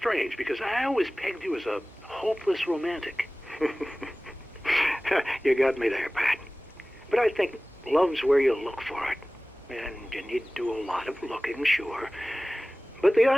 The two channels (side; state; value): both; normal; correlation 0.98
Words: because I always pegged you as a hopeless romantic. You got me there, Pat. But I think love's where you look for it. And you need to do a lot of looking, sure. But the